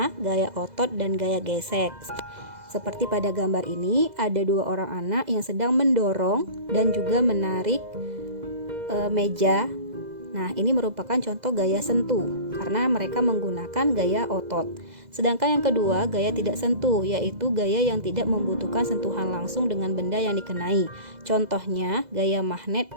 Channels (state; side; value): late; left; 2.0 ms